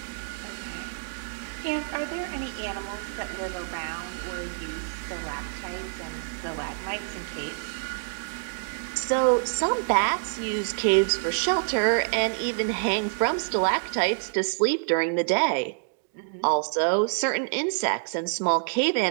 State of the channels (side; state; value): left; silent; digital silence